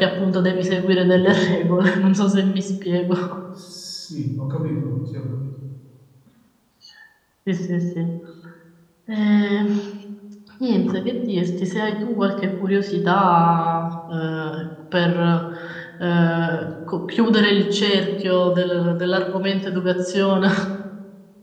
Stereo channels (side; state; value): both; identical; correlation 1.00